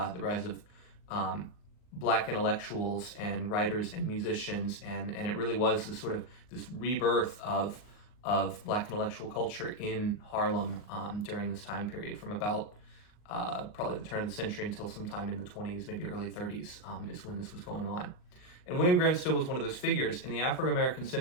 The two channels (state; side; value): late; right; 39 ms